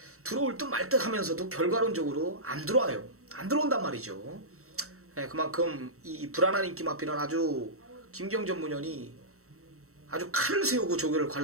들어올 듯 말 듯 하면서도 결과론적으로 안 들어와요. 안 들어온단 말이죠. 그만큼 이 불안한 인기 마필은 아주 김기영 전문위원이 아주 칼을 세우고 조교를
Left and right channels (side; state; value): left; late; 0.64 ms